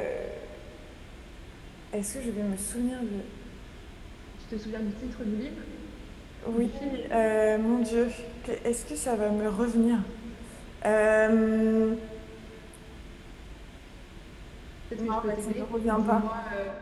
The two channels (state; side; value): identical; both; correlation 1.00